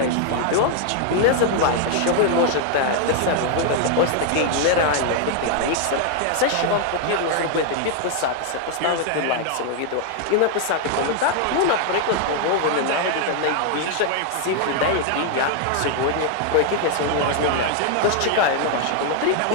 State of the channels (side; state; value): both; different; correlation 0.00